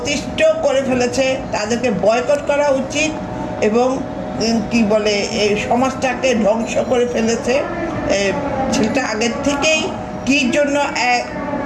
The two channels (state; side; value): identical; both; correlation 1.00